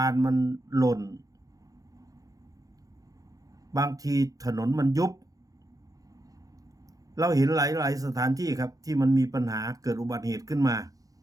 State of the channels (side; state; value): left; late; 0.17 ms